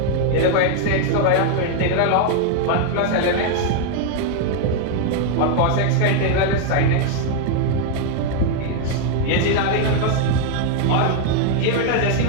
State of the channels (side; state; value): both; different; correlation 0.00